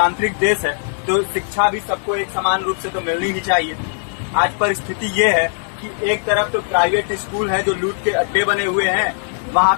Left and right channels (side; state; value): right; silent; 67 dB below the other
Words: देश है, तो शिक्षा भी सबको एक समान रूप से तो मिलनी ही चाहिए। आज परिस्थिति ये है कि एक तरफ तो प्राइवेट स्कूल हैं जो लूट के अड्डे बने हुए हैं, वहां